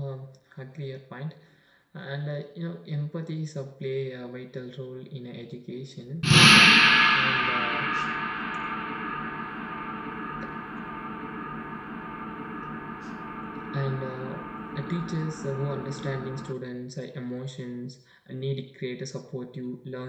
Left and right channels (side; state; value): both; identical; correlation 1.00